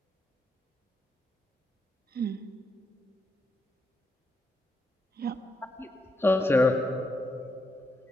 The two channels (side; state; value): both; normal; correlation 0.81